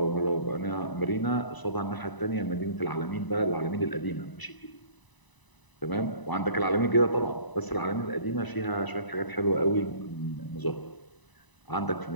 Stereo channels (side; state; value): right; late; 1.0 ms